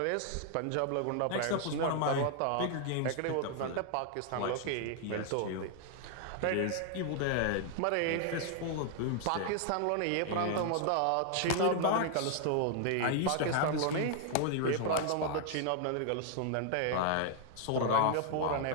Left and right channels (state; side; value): different; both; correlation 0.00